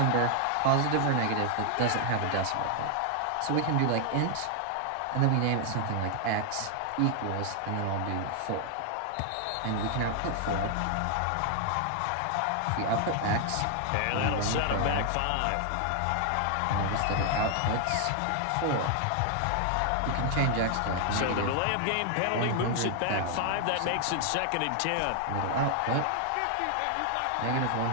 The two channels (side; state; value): both; different; correlation 0.00